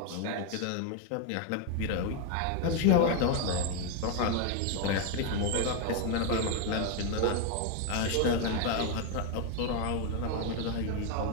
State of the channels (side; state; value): both; different; correlation 0.01